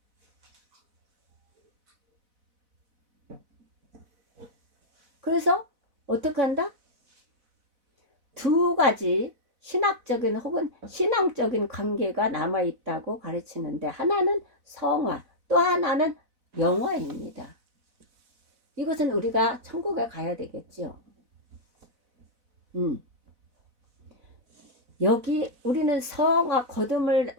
그래서 어떻게 한다? 두 가지 신학적인 혹은 신앙적인 관계가 남아있다고 가르치는데, 하나는 성화, 또 하나는 영화입니다. 이것은 우리가 천국에 가야 되겠죠. 여기 우리는 성화,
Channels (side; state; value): left; late; 4.0 ms